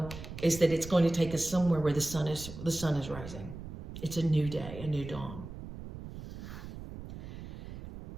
is that it's going to take us somewhere where the sun is rising. It's a new day, a new dawn.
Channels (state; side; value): noise; right; rumble, 11 dB below the sound